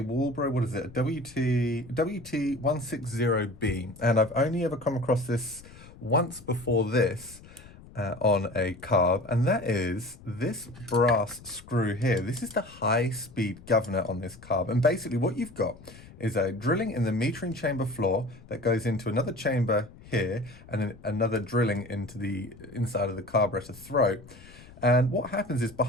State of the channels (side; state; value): left; noise; rumble, 20 dB below the sound